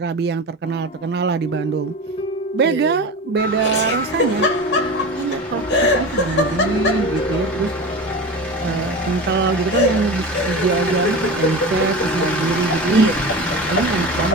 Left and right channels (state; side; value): normal; both; correlation 0.29